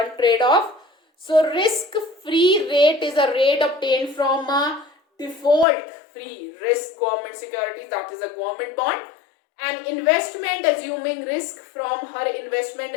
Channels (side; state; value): right; drops out; at 5.7 s